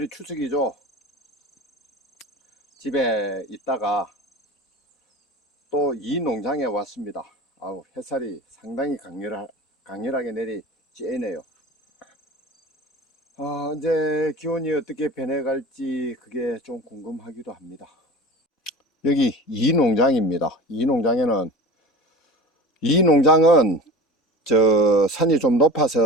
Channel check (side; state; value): both; normal; correlation 0.35